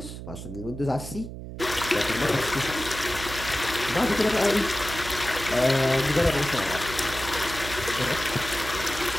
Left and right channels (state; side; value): noise; right; hum, 10 dB below the sound